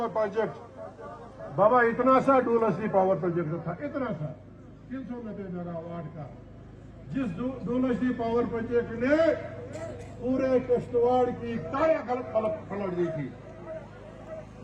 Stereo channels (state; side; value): identical; both; correlation 1.00